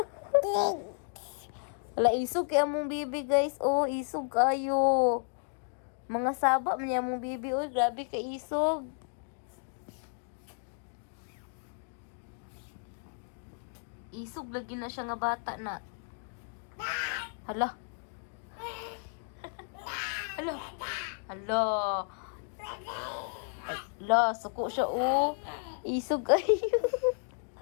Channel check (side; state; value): right; silent; 56 dB below the other